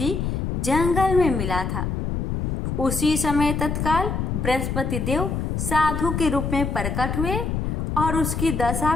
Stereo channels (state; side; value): noise; left; rumble, 1 dB below the sound